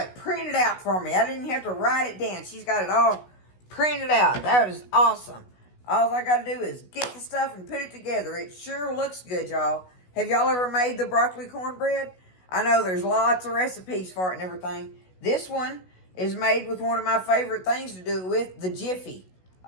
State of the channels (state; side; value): late; right; 16 ms